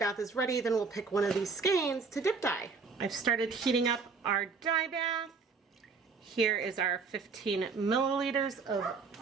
is ready, then we'll pick one of these skeins to dip dye. I've started heating up our dye bath. Here is our 15 milliliters of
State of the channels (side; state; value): left; quieter; 4.8 dB